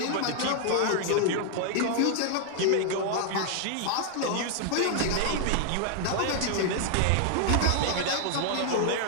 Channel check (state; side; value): different; both; correlation 0.00